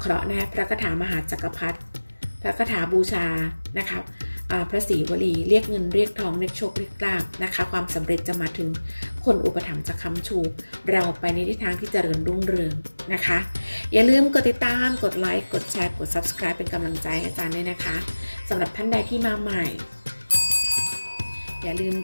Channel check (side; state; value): both; inverted; correlation -1.00